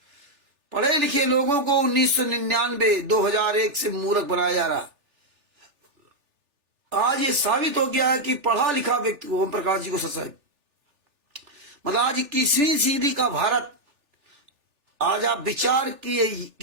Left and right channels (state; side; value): late; left; 3.4 ms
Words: लोगों को 1999 2001 से मूर्ख बनाया जा रहा। आज ये साबित हो गया है कि पढ़ा लिखा व्यक्ति, ओम प्रकाश जी को साहब, मतलब आज 21वीं सदी का भारत, आज आप विचार